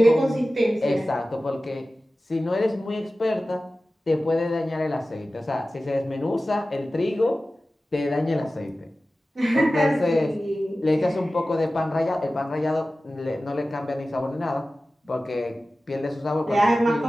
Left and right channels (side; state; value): both; normal; correlation 0.95